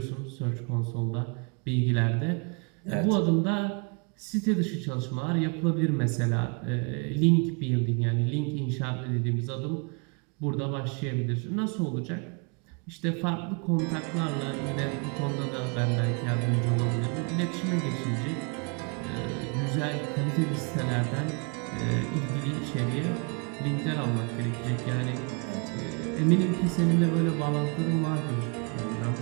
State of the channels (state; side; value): quieter; left; 35.1 dB